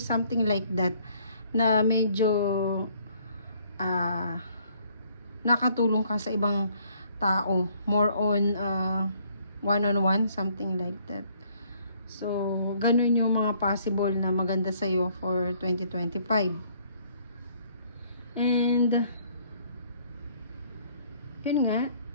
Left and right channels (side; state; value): both; inverted; correlation -0.63